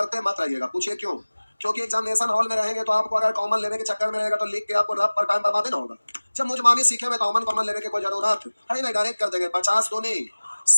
मत रहिएगा, पूछिए क्यों। क्योंकि एग्जामिनेशन हॉल में रहेंगे तो आपको अगर कॉमन लेने के चक्कर में रहेगा तो लिख के आपको रफ पर टाइम बर्बाद ना होगा। जब मुझमानी सीखे में कॉमन कॉमन लेने की कोई जरूरत है नहीं, डायरेक्ट कर देंगे। 50 दूनी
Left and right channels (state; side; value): inverted; both; correlation -1.00